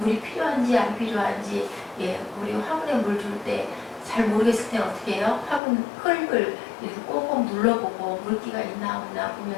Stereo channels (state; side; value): drops out; right; at 5.6 s